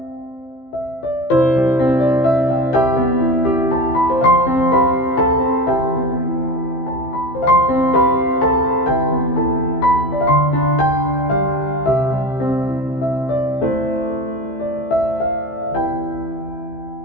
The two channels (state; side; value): late; right; 15 ms